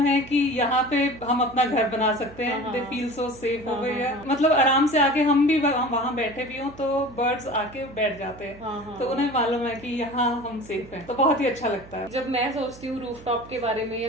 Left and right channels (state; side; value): noise; right; hum, 20 dB below the sound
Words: है कि यहाँ पे हम अपना घर बना सकते हैं। दे फील सो सेफ हो गई है, मतलब आराम से आके हम भी वहाँ बैठे भी हों तो बर्ड्स आके बैठ जाते हैं, तो उन्हें मालूम है कि यहाँ हम सेफ हैं, तो बहुत ही अच्छा लगता है। जब मैं सोचती हूँ रूफटॉप के बारे में या